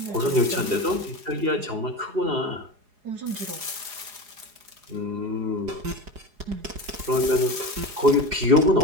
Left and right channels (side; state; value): left; late; 4.8 ms